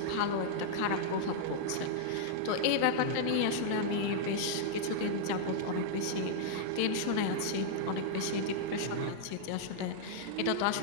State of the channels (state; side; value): different; both; correlation -0.02